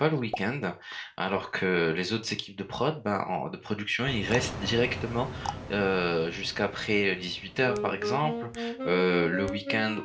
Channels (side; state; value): both; identical; correlation 1.00